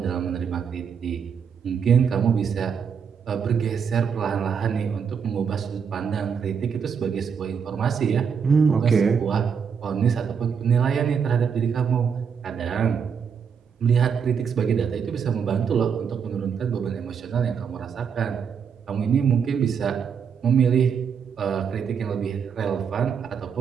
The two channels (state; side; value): quieter; left; 6.8 dB